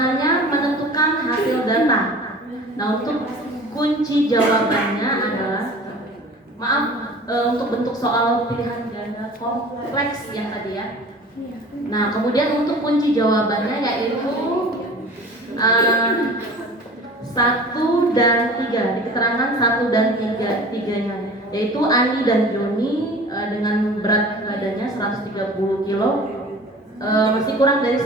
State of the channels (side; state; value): both; normal; correlation 0.42